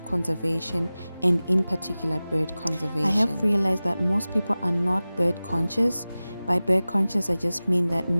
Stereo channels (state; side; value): inverted; both; correlation -0.97